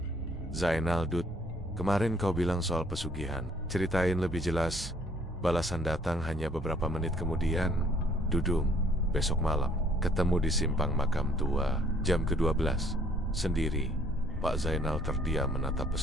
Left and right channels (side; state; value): both; normal; correlation 0.61